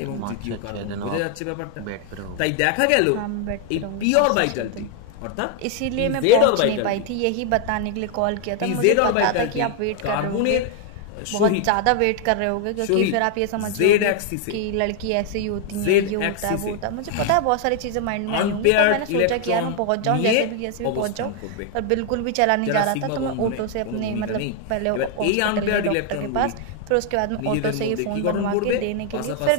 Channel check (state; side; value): different; both; correlation 0.00